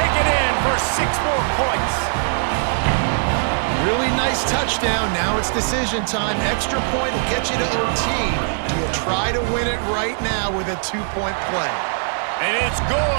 it in for 6 more points. Really nice touchdown. Now it's decision time. Extra point will get you to OT. Do you try to win it right now with a 2-point play? And it's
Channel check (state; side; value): silent; left; 62 dB below the other